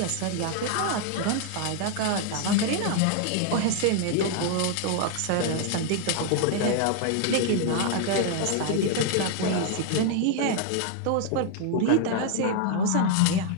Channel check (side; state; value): both; different; correlation 0.00